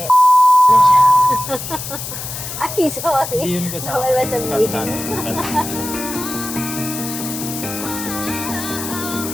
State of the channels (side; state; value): left; noise; hiss, 8 dB below the sound